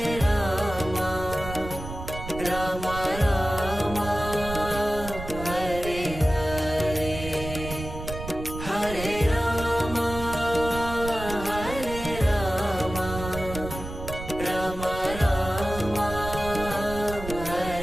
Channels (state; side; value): noise; right; rumble, 9 dB below the sound